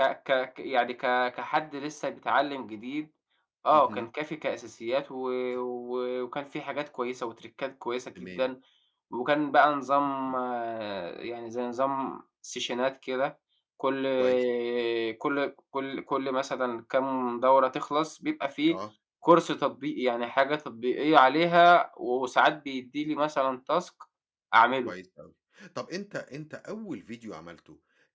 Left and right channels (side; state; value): both; identical; correlation 1.00